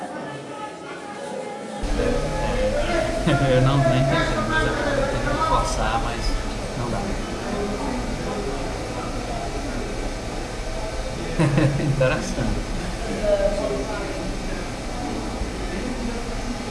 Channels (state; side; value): identical; both; correlation 1.00